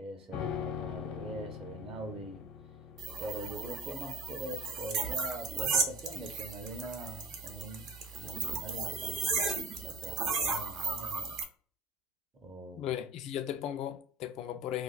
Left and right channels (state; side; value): normal; both; correlation 0.40